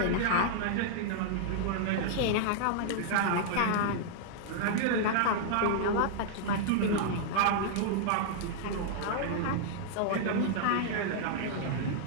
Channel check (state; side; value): different; both; correlation -0.01